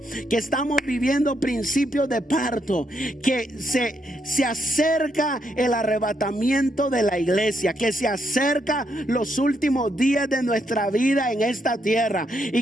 que estamos viviendo principios de parto, que se acerca el arrebatamiento de la iglesia, que se acerca los últimos días de nuestra vida en esta tierra, y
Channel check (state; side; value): normal; both; correlation 0.77